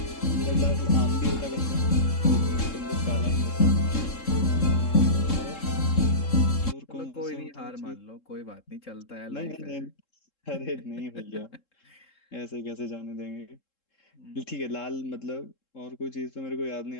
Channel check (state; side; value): late; right; 3.7 ms